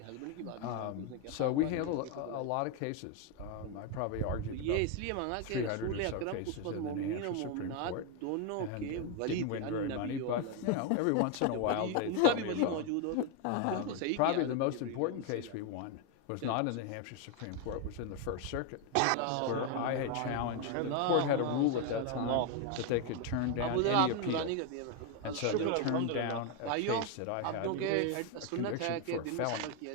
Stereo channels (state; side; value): different; both; correlation 0.01